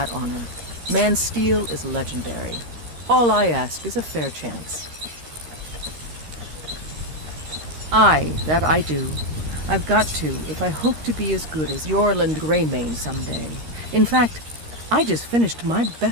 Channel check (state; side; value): late; left; 13 ms